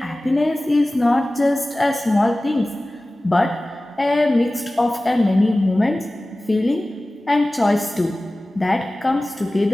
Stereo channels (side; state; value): both; normal; correlation 0.97